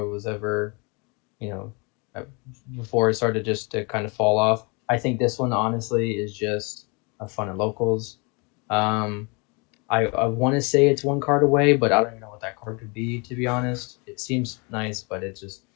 it was ever, you know, uh, before it started just to kind of fall off. I think this one honestly is just a fun at locals. Um, I want to say it's one card away, but I don't even know what that card could be, to be honest. It seems nice, but it's just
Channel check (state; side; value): quieter; right; 30.7 dB